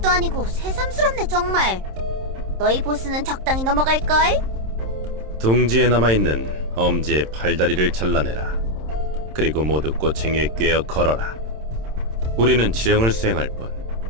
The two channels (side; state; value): left; late; 27 ms